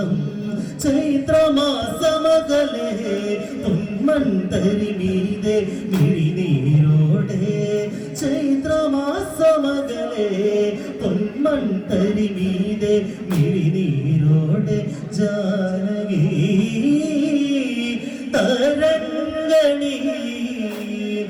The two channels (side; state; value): both; identical; correlation 1.00